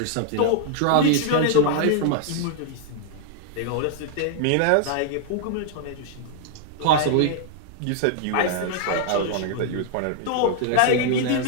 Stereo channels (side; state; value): both; different; correlation 0.00